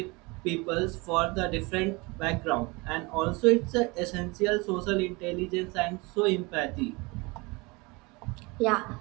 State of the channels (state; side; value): quieter; left; 26.0 dB